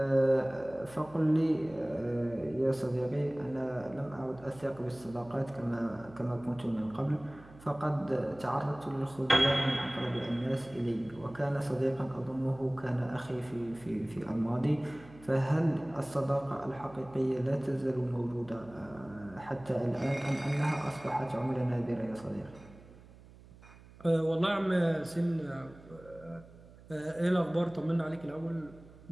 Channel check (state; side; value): noise; right; hum, 21 dB below the sound